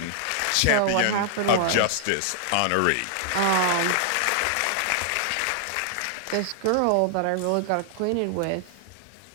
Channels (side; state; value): both; different; correlation -0.01